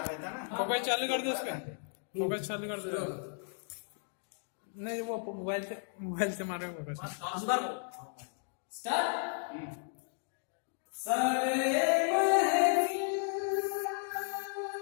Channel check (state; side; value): silent; right; 55 dB below the other